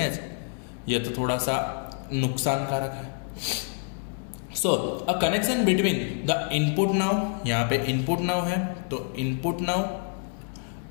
ये तो थोड़ा सा नुकसानकारक है। So a connection between the input now, यहाँ पे इनपुट नाउ है, तो input now,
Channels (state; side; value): silent; right; 55 dB below the other